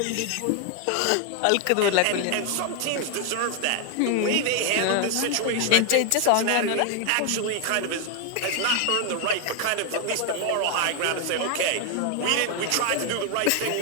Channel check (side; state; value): both; different; correlation 0.01